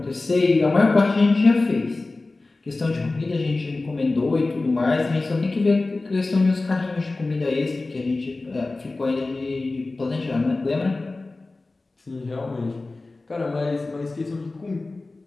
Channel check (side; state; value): right; quieter; 3.3 dB